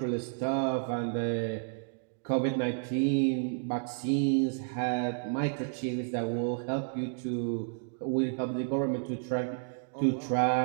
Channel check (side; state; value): left; silent; digital silence